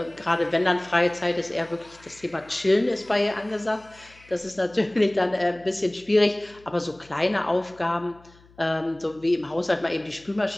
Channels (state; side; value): noise; left; hum, 27 dB below the sound